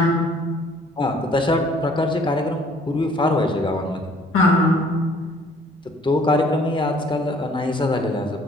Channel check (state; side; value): normal; both; correlation 0.58